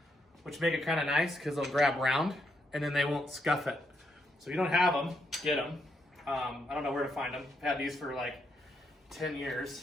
which make it kind of nice because they'll grab round, and then they won't scuff it. So if you don't have them, get them. I don't know where to find them. I've had these for like 10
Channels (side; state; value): both; normal; correlation 0.78